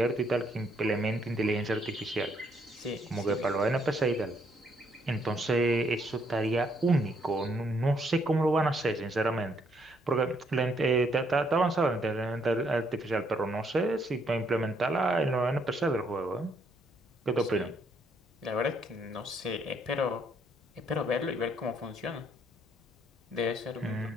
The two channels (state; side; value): normal; both; correlation 0.71